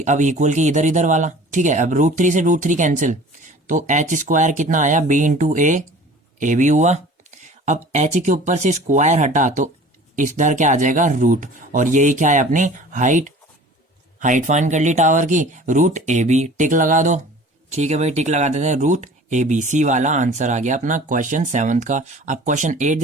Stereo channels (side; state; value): both; normal; correlation 0.45